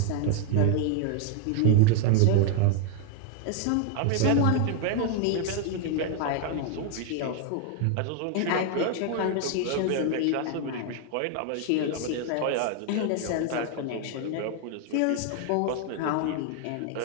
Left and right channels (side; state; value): both; different; correlation 0.00